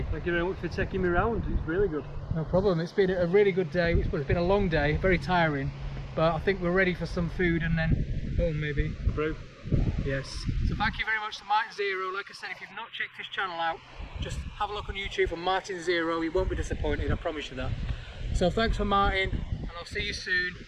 Thank you very much for taking me around. It's really good. No problem. It's been a really good day. It's been a long day, very tiring, but I think we're ready for some food and then home maybe. Through. Yes. So thank you very much to MartinZero. Like I said, if you've not checked his channel out, just have a look on YouTube for MartinZero. You won't be disappointed, I promise you that. So thanks for Martin, and I'll see you soon.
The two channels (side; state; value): both; identical; correlation 1.00